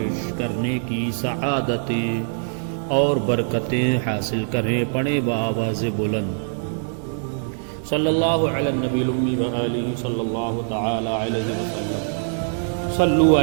کرنے کی سعادتیں اور برکتیں حاصل کریں. پڑھیں بآواز بلند صلی اللہ علی النبی الامی وآلہ صلی اللہ تعالی علیہ وسلم. صلو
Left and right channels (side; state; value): left; silent; digital silence